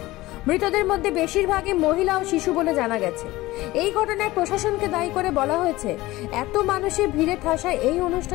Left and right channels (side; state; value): right; quieter; 18.5 dB